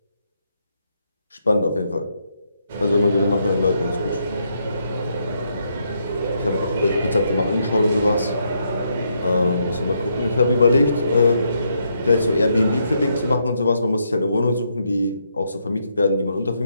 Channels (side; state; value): both; inverted; correlation -0.77